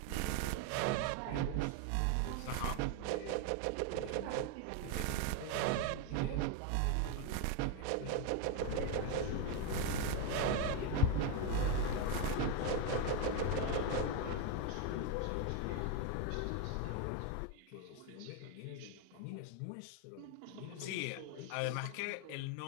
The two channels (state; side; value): different; both; correlation 0.02